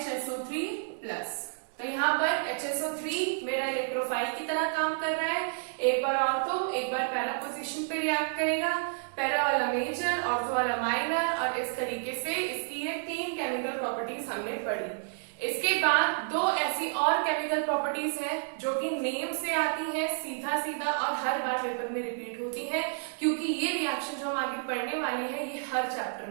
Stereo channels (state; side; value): silent; left; digital silence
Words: प्लस। तो यहाँ पर HSO3 मेरा इलेक्ट्रोफाइल की तरह काम कर रहा है, एक बार ऑर्थो एक बार पैरा पोजीशन पे रिएक्ट करेगा, पैरा वाला मेजर, ऑर्थो वाला माइनर, और इस तरीके से इसकी ये 3 केमिकल प्रॉपर्टीज हमने पढ़ी। इसके बाद 2 ऐसी और केमिकल प्रॉपर्टीज हैं जो कि नेम से आती हैं सीधा सीधा और हर बार पेपर में रिपीट होती हैं, क्योंकि ये रिएक्शन जो हम आगे पढ़ने वाले हैं ये हर चैप्टर